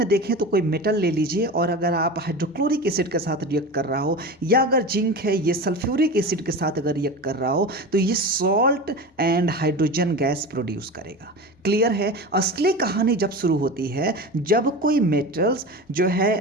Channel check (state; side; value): normal; both; correlation 0.28